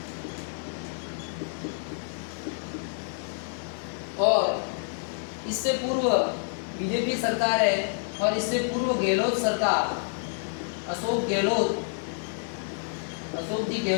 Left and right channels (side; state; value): right; silent; 55 dB below the other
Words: और इससे पूर्व बीजेपी सरकार है और इससे पूर्व गहलोत सरकार, अशोक जी